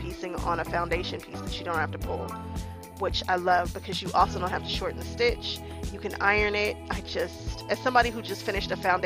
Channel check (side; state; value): both; identical; correlation 1.00